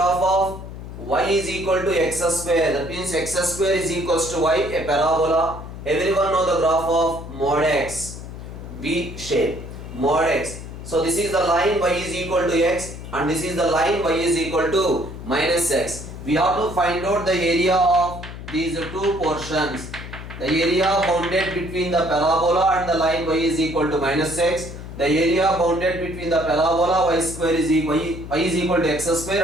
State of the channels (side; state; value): left; noise; hum, 11 dB below the sound